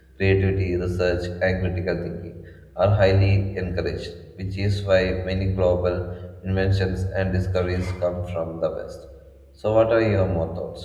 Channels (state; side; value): identical; both; correlation 1.00